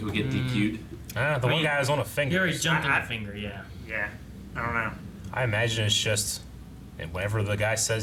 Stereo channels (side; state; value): both; identical; correlation 1.00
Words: would get DQ'd. The one mean, guy was on a He finger. already jumped on I- the finger, yeah. Yeah, I don't know. I imagine it's just whenever the guy